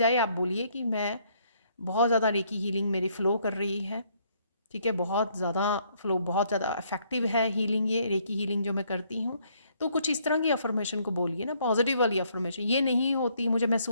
आप बोलिए कि मैं बहुत ज़्यादा रेकी हीलिंग मेरी फ़्लो कर रही है, ठीक है, बहुत ज़्यादा फ़्लो, बहुत ज़्यादा इफ़ेक्टिव है हीलिंग, ये रेकी हीलिंग जो मैं करती हूँ। तो कुछ इस तरह की अफर्मेशन को बोलिए ना, पॉजिटिव वाली अफर्मेशन, ये नहीं होती, मुझे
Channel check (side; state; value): both; inverted; correlation -0.68